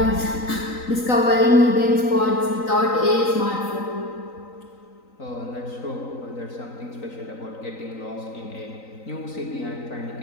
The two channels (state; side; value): late; right; 3.9 ms